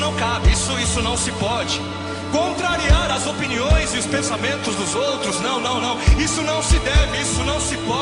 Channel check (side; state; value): both; identical; correlation 1.00